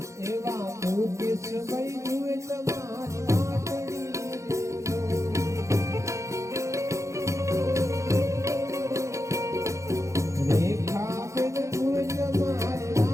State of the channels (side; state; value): left; late; 0.15 ms